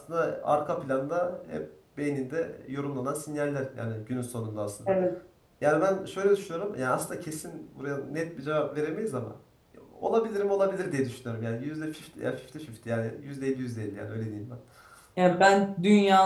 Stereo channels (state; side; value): identical; both; correlation 1.00